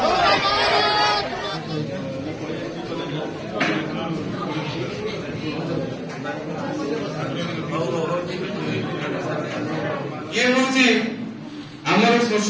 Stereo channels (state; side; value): identical; both; correlation 1.00